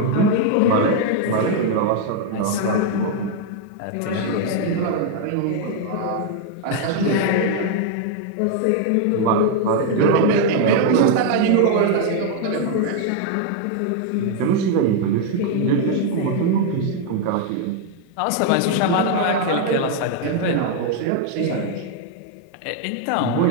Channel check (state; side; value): different; both; correlation 0.00